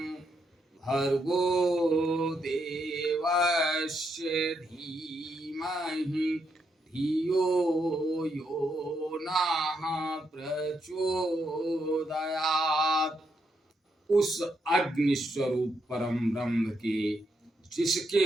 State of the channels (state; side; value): normal; both; correlation 0.80